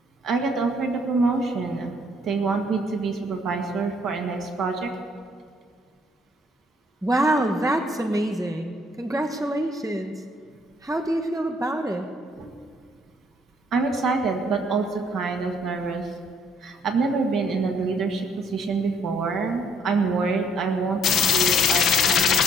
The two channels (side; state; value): both; normal; correlation 0.65